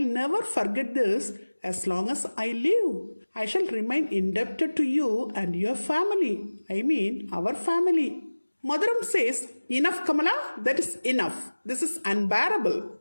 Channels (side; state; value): both; inverted; correlation -1.00